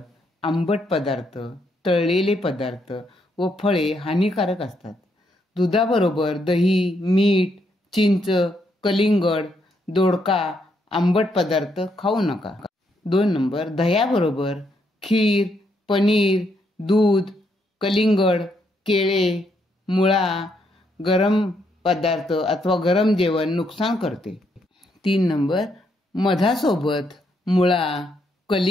आंबट पदार्थ, तळलेले पदार्थ व फळे हानिकारक असतात. दुधाबरोबर दही, मीठ, चिंच, कलिंगड, दोडका, आंबट पदार्थ खाऊ नका. 2 नंबर, दह्याबरोबर खीर, पनीर, दूध, कलिंगड, केळे, मुळा, गरम पदार्थ अथवा गरम जेवण नुकसान करते. 3 नंबर, मधासोबत मुळा,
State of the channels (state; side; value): normal; both; correlation 0.76